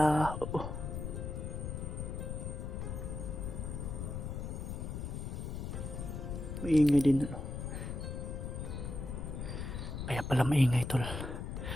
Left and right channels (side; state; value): left; noise; rumble, 4 dB below the sound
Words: maingay din, ano. Kaya pala maingay, tol.